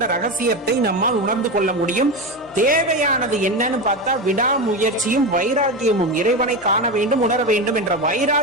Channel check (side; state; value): both; normal; correlation 0.19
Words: ரகசியத்தை நம்மால் உணர்ந்து கொள்ள முடியும். தேவையானது என்னன்னு பார்த்தா விடாமுயற்சியும் வைராக்கியமும். இறைவனை காண வேண்டும், உணர வேண்டும் என்ற